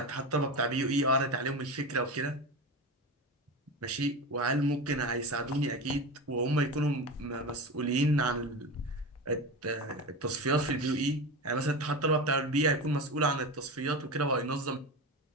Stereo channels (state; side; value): normal; both; correlation 0.24